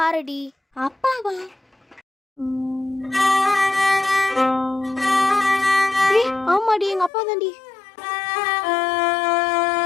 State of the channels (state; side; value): drops out; right; at 7.1 s